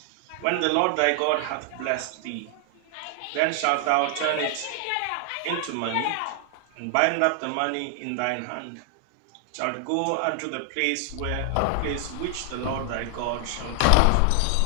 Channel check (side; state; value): both; different; correlation 0.00